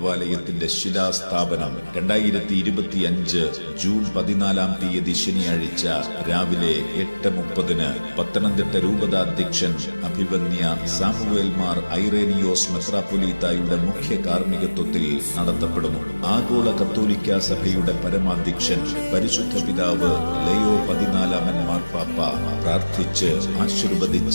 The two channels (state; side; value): inverted; both; correlation -1.00